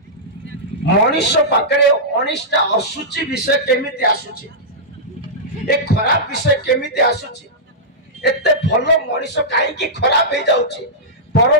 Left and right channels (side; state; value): both; normal; correlation -0.13